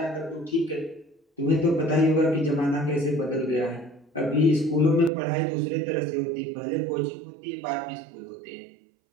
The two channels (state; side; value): drops out; left; at 5.1 s